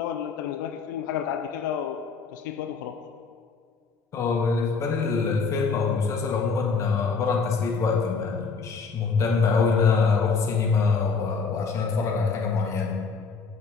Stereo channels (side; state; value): right; quieter; 5.0 dB